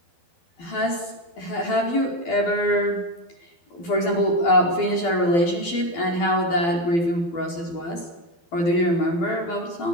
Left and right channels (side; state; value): right; late; 12 ms